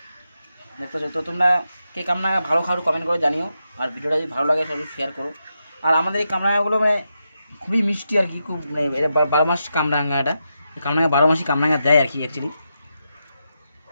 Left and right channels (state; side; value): inverted; both; correlation -0.86